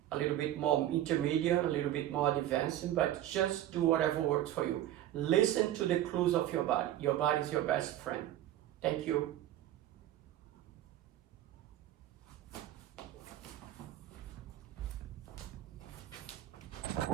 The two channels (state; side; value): quieter; left; 13.0 dB